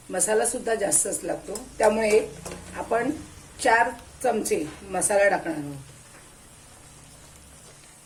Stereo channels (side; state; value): both; identical; correlation 1.00